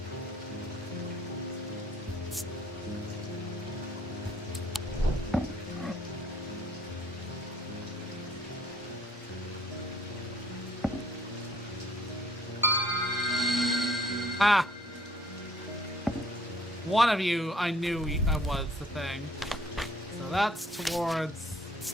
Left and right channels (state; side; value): normal; both; correlation 0.61